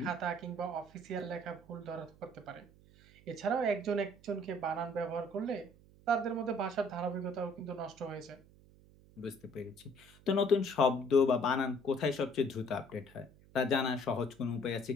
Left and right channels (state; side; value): noise; right; hum, 25 dB below the sound